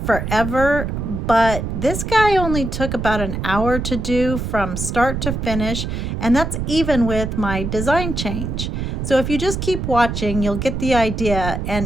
but this guy only took about an hour to do from start to finish, and that's even with my design change. So if you just keep watching, you'll get the idea, and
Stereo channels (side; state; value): right; noise; rumble, 3 dB below the sound